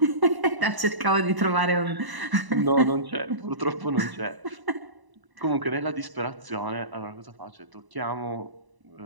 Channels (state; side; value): late; left; 1.0 ms